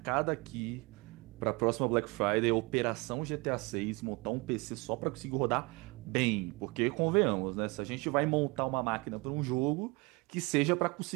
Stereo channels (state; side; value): quieter; left; 26.7 dB